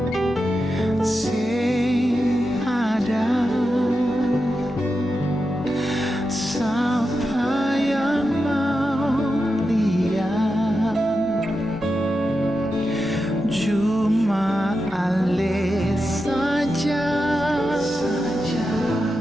Sing ada siapa yang mau lihat, cuma ale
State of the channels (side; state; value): both; normal; correlation 0.89